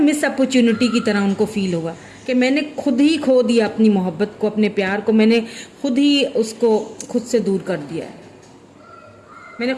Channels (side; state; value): both; identical; correlation 1.00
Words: अपॉर्चुनिटी की तरह उनको फील होगा कि मैंने खुद ही खो दिया अपनी मोहब्बत को, अपने प्यार को, मैंने खुद ही उसको खुद से दूर कर दिया है। मैंने